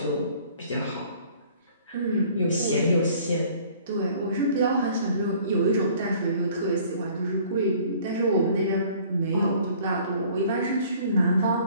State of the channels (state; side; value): inverted; both; correlation -0.54